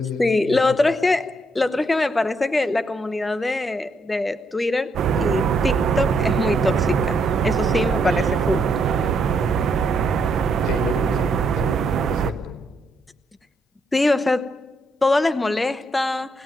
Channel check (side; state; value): both; normal; correlation 0.76